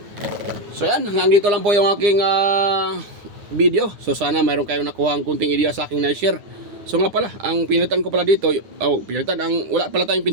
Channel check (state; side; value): late; left; 9.8 ms